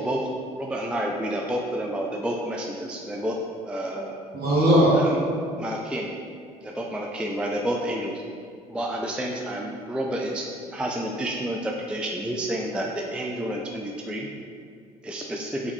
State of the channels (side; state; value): both; normal; correlation 0.58